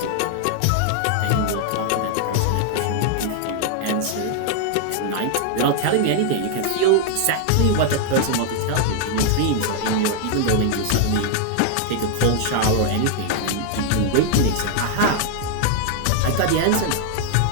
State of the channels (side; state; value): both; different; correlation 0.00